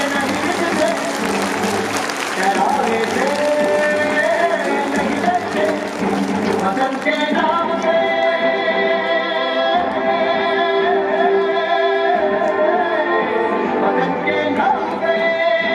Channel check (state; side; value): identical; both; correlation 1.00